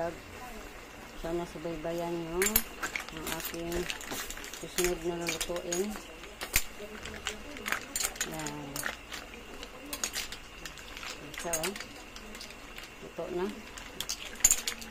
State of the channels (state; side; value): identical; both; correlation 1.00